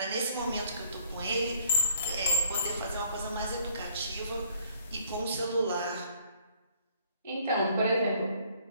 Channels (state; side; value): inverted; both; correlation -0.60